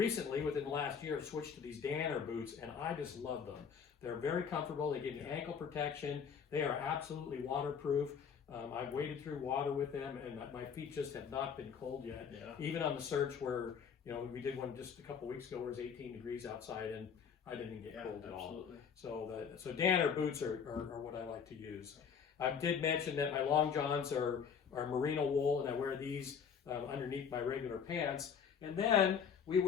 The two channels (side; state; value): right; quieter; 6.9 dB